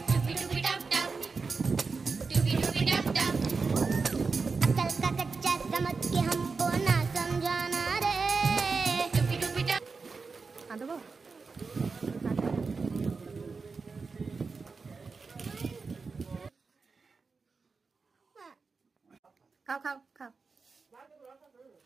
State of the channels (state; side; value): quieter; left; 4.6 dB